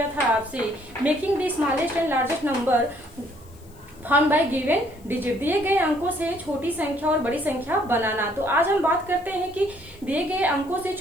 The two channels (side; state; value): left; noise; hiss, 27 dB below the sound